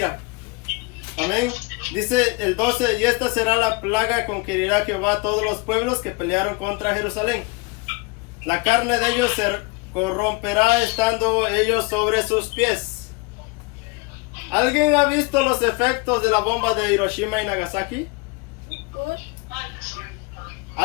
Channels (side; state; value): right; quieter; 27.0 dB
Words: Amén. Dice el 12, y esta será la plaga con que herirá Jehová a todos los pueblos que pelearon contra Jerusalén. La carne de ellos se corromperá estando ellos sobre sus pies. ¿Alguien ha visto los efectos de la bomba de Hiroshima y Nagasaki?